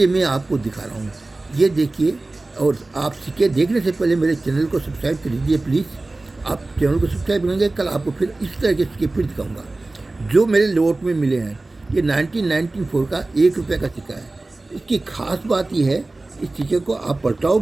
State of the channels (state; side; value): quieter; left; 3.1 dB